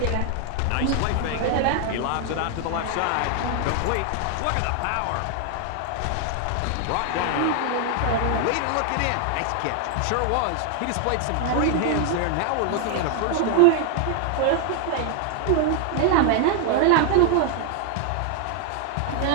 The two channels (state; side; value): different; both; correlation 0.00